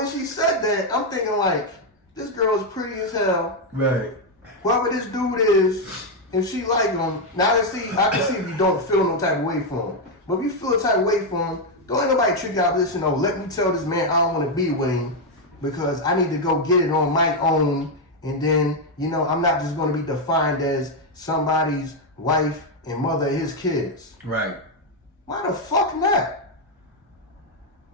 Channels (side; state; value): both; normal; correlation 0.03